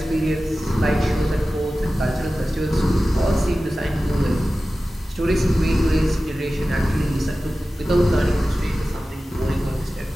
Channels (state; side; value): normal; both; correlation 0.95